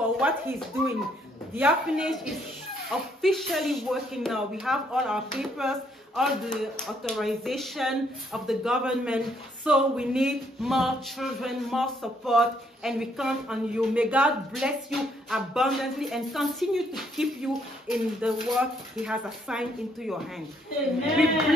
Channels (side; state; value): both; normal; correlation 0.69